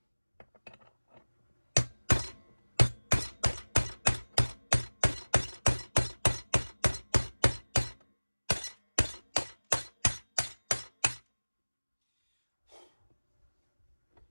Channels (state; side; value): inverted; both; correlation -1.00